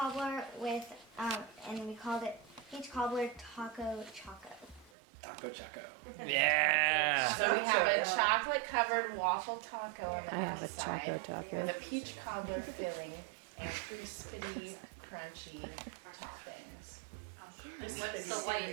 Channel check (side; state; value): left; drops out; at 4.9 s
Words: with, and we called it peach cobbler taco choco. Taco Choco. Yeah. So we have a chocolate covered waffle taco on the I have a outside choco taco. with a peach cobbler filling and crispity, crunchy toppings. What's the